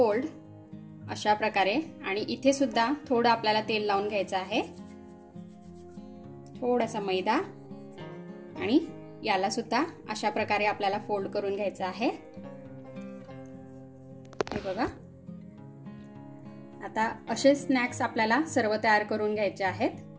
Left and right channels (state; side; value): identical; both; correlation 1.00